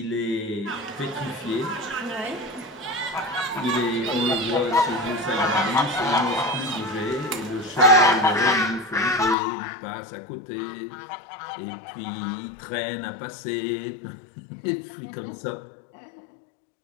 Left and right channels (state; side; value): drops out; right; at 9.3 s